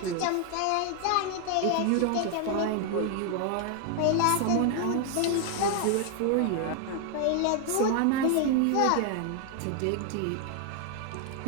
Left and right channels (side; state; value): both; different; correlation 0.00